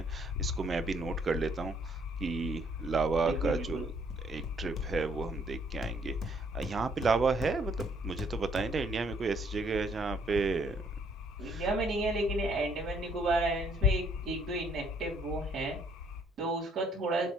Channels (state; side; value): normal; both; correlation 0.66